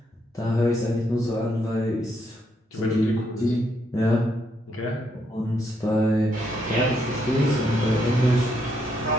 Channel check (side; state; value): both; normal; correlation 0.76